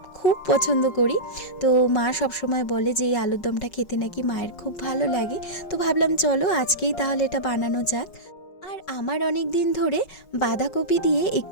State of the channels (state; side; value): late; right; 5.3 ms